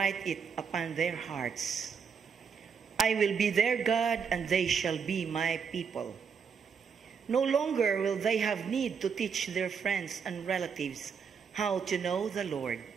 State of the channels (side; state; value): left; quieter; 6.4 dB